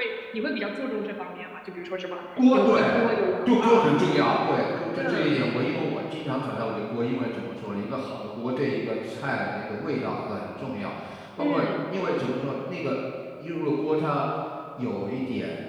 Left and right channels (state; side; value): identical; both; correlation 1.00